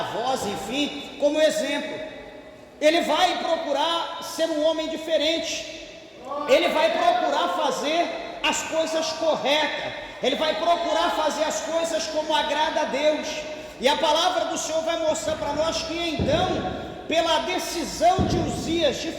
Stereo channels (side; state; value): both; identical; correlation 1.00